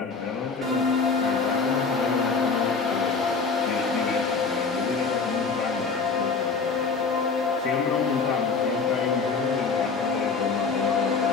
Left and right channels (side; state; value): right; quieter; 4.8 dB